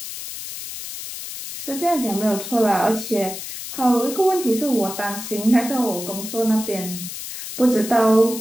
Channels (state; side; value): noise; left; hiss, 9 dB below the sound